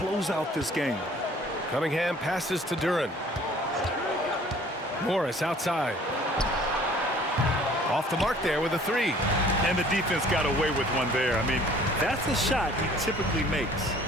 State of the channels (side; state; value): both; normal; correlation 0.53